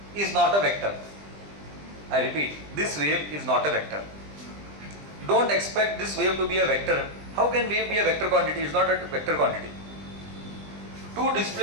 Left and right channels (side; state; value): left; late; 20 ms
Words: is not a vector. I repeat, this wave is not a vector. Don't expect this wave to be a vector. How can wave be a vector quantity? It's not a vector quantity. Two